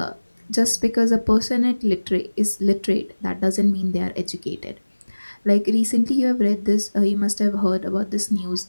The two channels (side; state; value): both; inverted; correlation -1.00